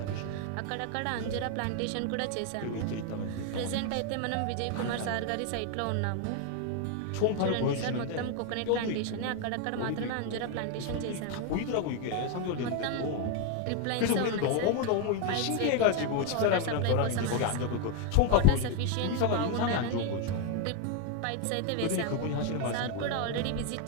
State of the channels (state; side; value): different; both; correlation 0.01